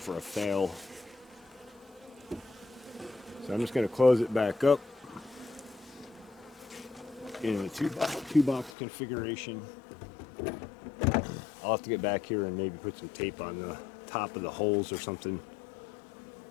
a fail. So I'm just going to close it back up in the 2-box configuration. I'll have to get back here and maybe put some tape on the top of the holes or something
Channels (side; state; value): right; drops out; at 8.7 s